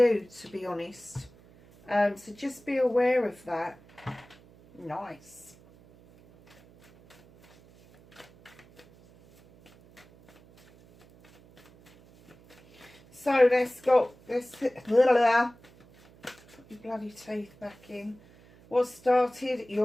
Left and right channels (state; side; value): noise; right; hum, 26 dB below the sound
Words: to be honest. So just be aware of that. Nice. So let's go. Let's put your bloody teeth back in. What started